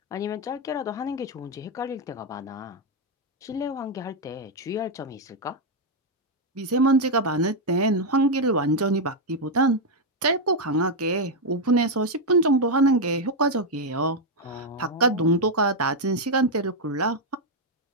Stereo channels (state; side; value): normal; both; correlation 0.01